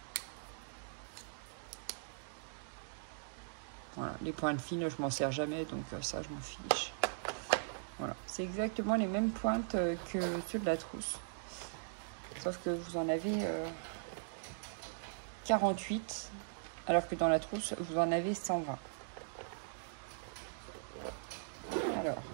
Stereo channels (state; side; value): silent; left; digital silence